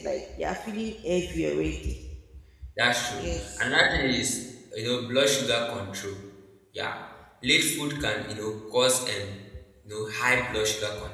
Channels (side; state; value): both; identical; correlation 1.00